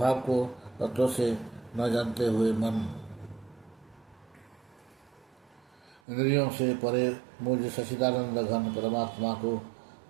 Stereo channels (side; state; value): left; drops out; at 6.0 s